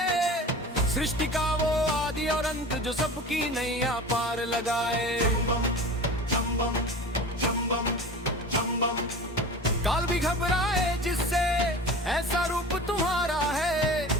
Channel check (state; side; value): normal; both; correlation 0.36